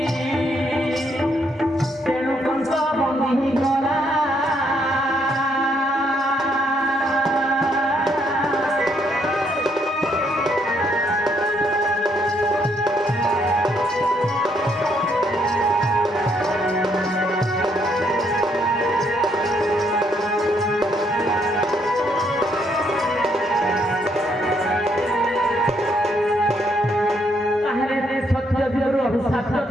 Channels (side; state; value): both; normal; correlation 0.72